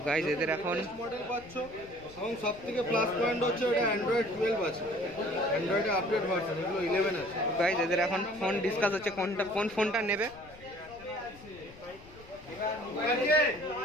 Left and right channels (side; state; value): left; noise; rumble, 21 dB below the sound